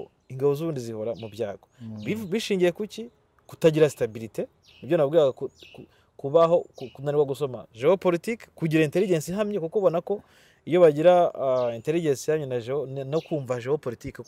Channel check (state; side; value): identical; both; correlation 1.00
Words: ingabo z'Uburundi zihora mu byago bishingiye kuki kutagira stabilité. Nibyo nabwiraga kubaho kunanirwa gusoma geopolitique, kugira intelligence ihamye, kuko ubona ko iyo bagira intelligence yanye no kumva geopolitique